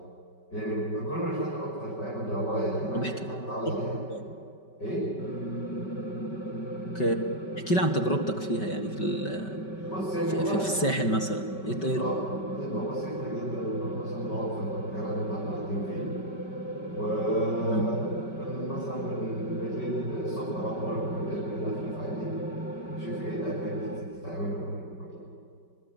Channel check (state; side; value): late; right; 5.2 ms